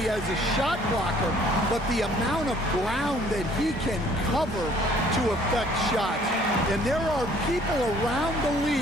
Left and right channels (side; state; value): both; normal; correlation 0.58